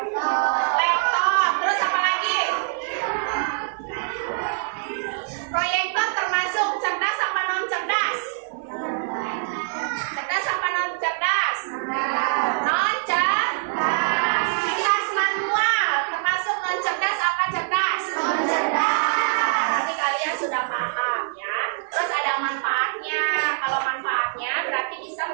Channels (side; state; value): left; silent; 57 dB below the other